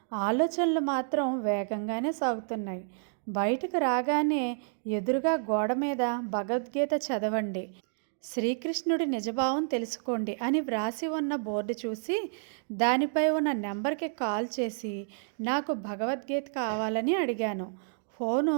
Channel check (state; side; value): silent; left; digital silence